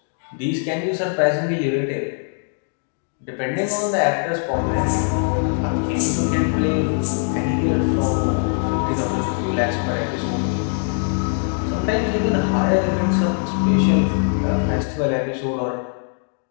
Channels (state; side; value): silent; right; 60 dB below the other